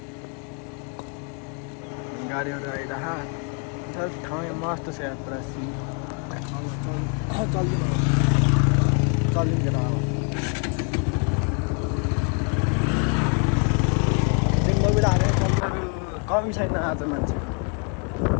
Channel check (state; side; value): quieter; right; 36.9 dB